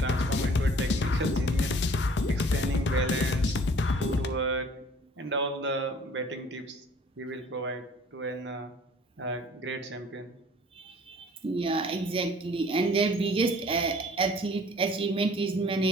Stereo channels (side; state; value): both; normal; correlation 0.52